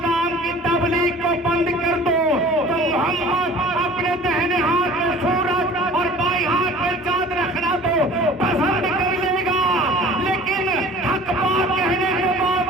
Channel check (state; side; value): normal; both; correlation 0.45